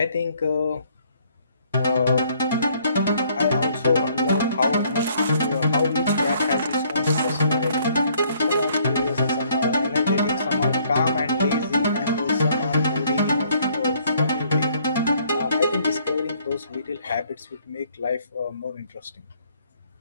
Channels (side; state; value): both; inverted; correlation -0.64